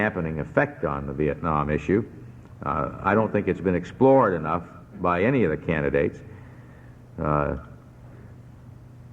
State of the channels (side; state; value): both; identical; correlation 1.00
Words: effect on the Vietnam issue. I don't think it's been explored enough by any of the candidates. But